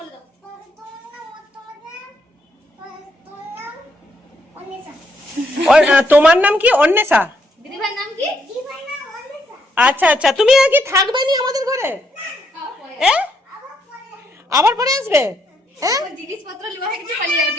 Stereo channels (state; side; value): normal; both; correlation 0.75